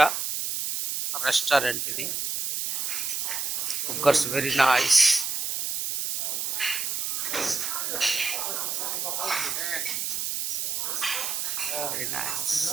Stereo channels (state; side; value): noise; right; hiss, 1 dB below the sound